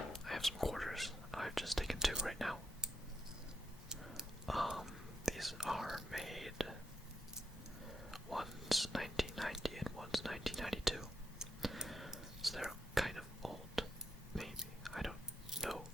have some quarters. I've just taken two right now. These are made, one's 1990 and one's 1992. So they're kind of old, maybe. I don't know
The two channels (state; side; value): normal; both; correlation 0.83